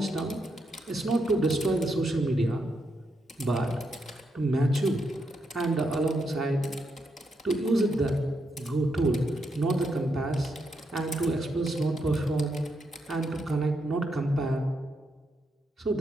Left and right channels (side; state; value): both; normal; correlation 0.81